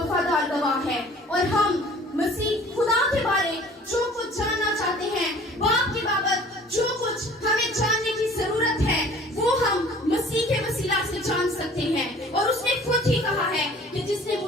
गवाह है और हम मसीह खुदा के बारे जो कुछ जानना चाहते हैं, बाप के बाबत जो कुछ हमें जानने की जरूरत है, वो हम मसीह के वसीला से जान सकते हैं। और उसने खुद ही कहा है कि जिसने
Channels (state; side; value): normal; both; correlation 0.49